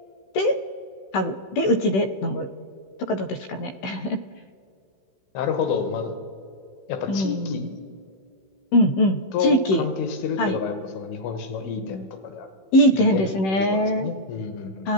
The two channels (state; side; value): late; right; 16 ms